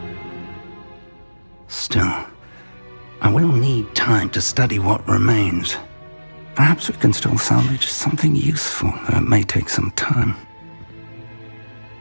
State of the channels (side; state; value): both; inverted; correlation -1.00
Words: Still, I will need time to study what remains. Perhaps we can still salvage something useful, though it may take some time.